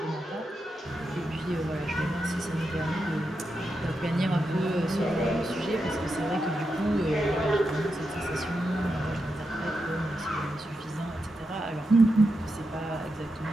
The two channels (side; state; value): both; normal; correlation 0.87